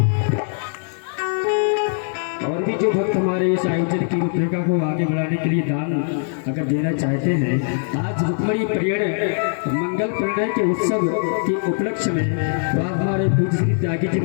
और भी जो भक्त हमारे इस आयोजन की रूपरेखा को आगे बढ़ाने के लिए दान अगर देना चाहते हैं, आज रुक्मणी परियण मंगल परिणय के उत्सव के उपलक्ष्य में तो आप हमारे पूज्य श्री त्यागी जी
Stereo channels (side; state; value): right; silent; digital silence